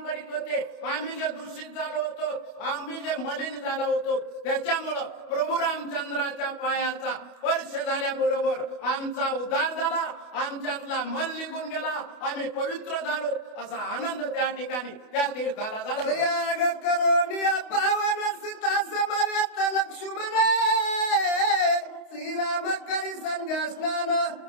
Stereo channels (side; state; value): right; late; 28 ms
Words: करीत होते, आम्ही जे दूषित झालो होतो, आम्ही जे मलिन झालो होतो, त्याच्यामुळं प्रभू रामचंद्राच्या पायाचा स्पर्श झाल्याबरोबर आमचा उद्धार झाला, आमच्यातला मल निघून गेला, आम्ही पवित्र झालो. असा आनंद त्या ठिकाणी त्या तीर्थाला झाला. प्रयाग करोनी पावन सीता समवेत लक्ष्मण, श्रीराम करी संध्या स्नान